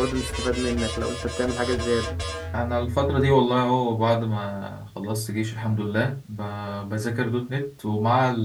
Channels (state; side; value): identical; both; correlation 1.00